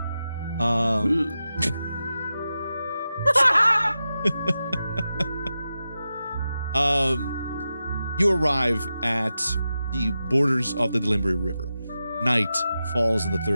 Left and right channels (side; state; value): both; inverted; correlation -0.91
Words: You arrive at the borders of the Delimbri River. Night falls on the